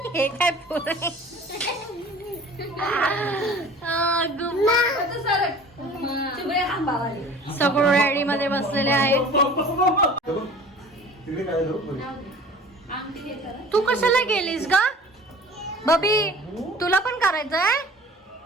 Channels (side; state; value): both; normal; correlation 0.44